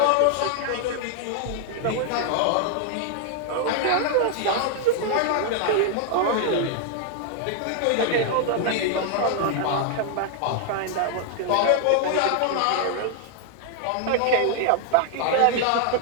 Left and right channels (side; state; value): both; different; correlation 0.00